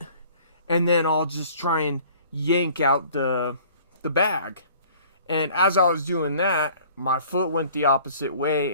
and then I'll just try and yank out the bag. And as I was doing that, my foot went the opposite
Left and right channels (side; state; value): both; inverted; correlation -0.51